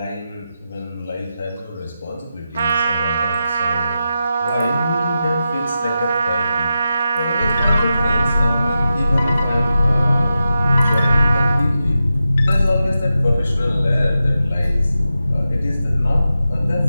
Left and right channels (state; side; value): inverted; both; correlation -0.90